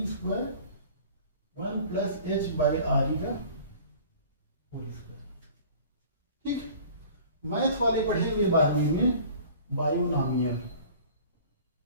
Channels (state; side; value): inverted; both; correlation -0.46